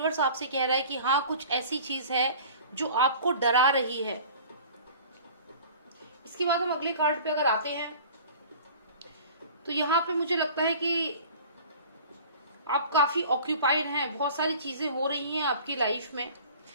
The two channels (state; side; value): inverted; both; correlation -0.44